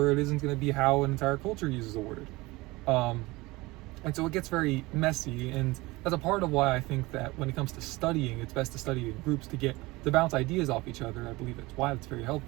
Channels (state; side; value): quieter; left; 21.6 dB